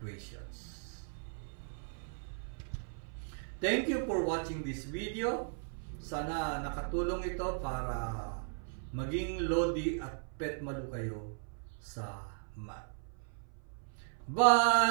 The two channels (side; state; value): left; silent; 53 dB below the other